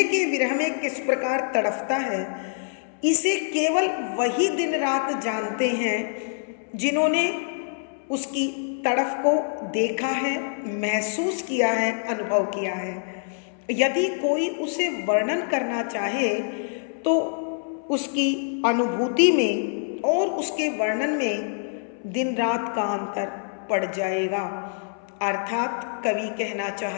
के विरह में किस प्रकार तड़फता है, इसे केवल वही दिन रात जानते हैं जिन्होंने उसकी तड़फ को देखा है, महसूस किया है, अनुभव किया है। यदि कोई उसे वर्णन करना चाहे तो उसकी अनुभूति में और उसके वर्णन में दिन रात का अंतर पड़ जाएगा। अर्थात कवि कहना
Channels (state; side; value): silent; right; 61 dB below the other